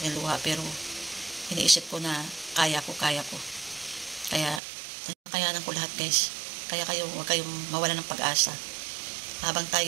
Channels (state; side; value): drops out; left; at 4.6 s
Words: luha, pero iniisip ko na kaya ko. Kaya kayanan ko lahat guys. Kaya kayo, huwag kayong mawala ng pag-asa. Habang